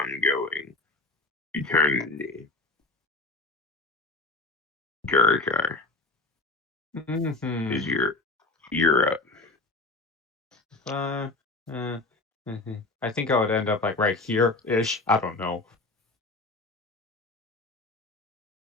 going. Eternity. Githyakei Mm-hmm. is you're up. I think I would end up like right here ish. I don't know.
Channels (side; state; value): right; quieter; 3.3 dB